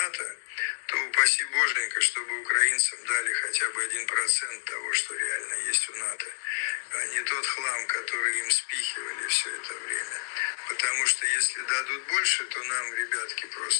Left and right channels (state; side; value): silent; right; digital silence